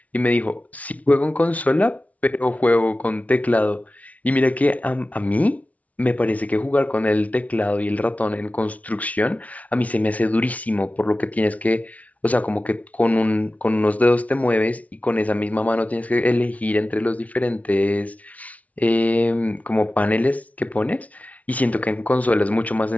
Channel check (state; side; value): late; right; 0.069 ms